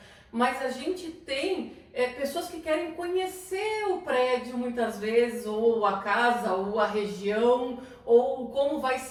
mas a gente tem pessoas que querem conhecer o prédio muitas vezes, ou a casa, ou a região, ou como vai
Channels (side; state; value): both; identical; correlation 1.00